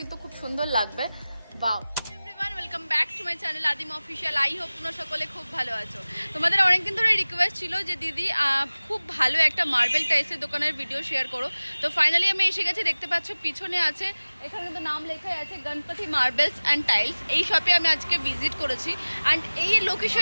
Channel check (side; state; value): both; inverted; correlation -0.99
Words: খুব সুন্দর লাগবে। বাও, welcome back to my channel আদিম অফিসিয়াল। আই হোপ তোমরা সকলে খুব ভালো আছো। তোমাদের অনেকদিন ধরে রিকোয়েস্ট ছিল যে দিদি খুব ভালো একটা মার্বেল টাইলসের দোকানের ভিডিও শেয়ার করো। তো ফাইনালি আমি এসে গেছি। দেখতে পাচ্ছ পিছনে আছে, এখানে কিন্তু নাম লেখাই আছে গণপতি মার্বেলস অ্যান্ড টাইলস। এই শপে আমি আজকে ভিজিট করেছি। অ্যান্ড এই